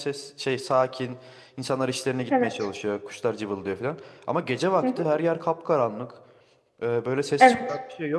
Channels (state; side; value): identical; both; correlation 1.00